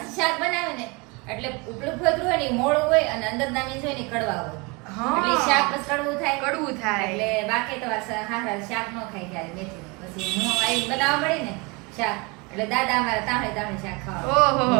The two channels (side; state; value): left; quieter; 27.7 dB